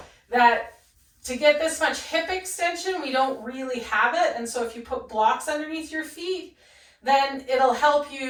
that to get this much hip extension, we don't really have it. And so if you put blocks underneath your feet, then it'll help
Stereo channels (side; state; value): both; identical; correlation 1.00